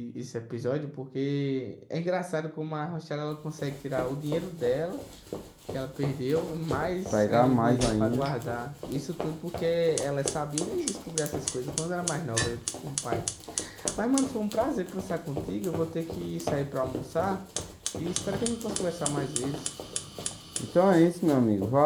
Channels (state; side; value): identical; both; correlation 1.00